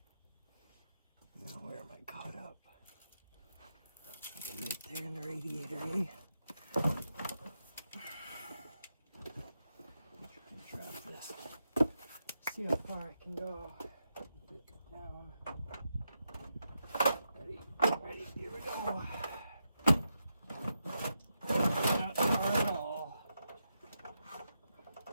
Right there in the radiator, eh? Try and drop this. See how far I can go. Put it down. Ready, here we go. Not far at all.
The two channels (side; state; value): both; inverted; correlation -0.85